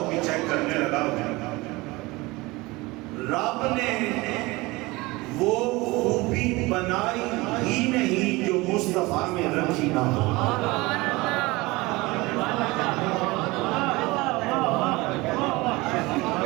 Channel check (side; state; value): left; quieter; 22.3 dB